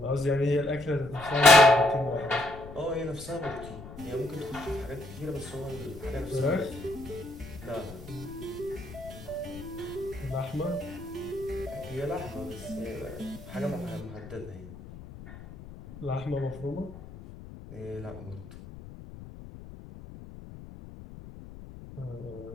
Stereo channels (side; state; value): left; noise; rumble, 14 dB below the sound